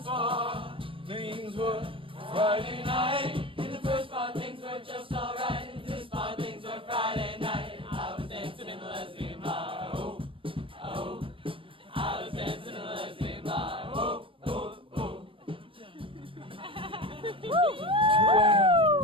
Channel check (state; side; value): late; left; 0.25 ms